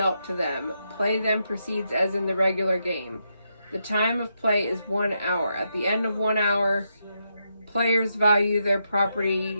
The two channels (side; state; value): both; inverted; correlation -0.82